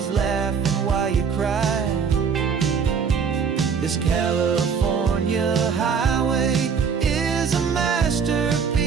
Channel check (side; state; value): left; quieter; 6.3 dB